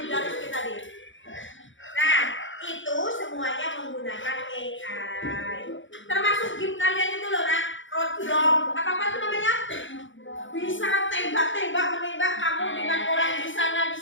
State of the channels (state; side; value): late; right; 0.56 ms